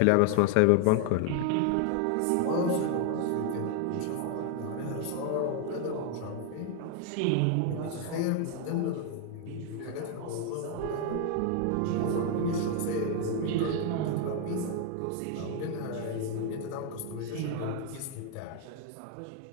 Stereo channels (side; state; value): both; different; correlation 0.00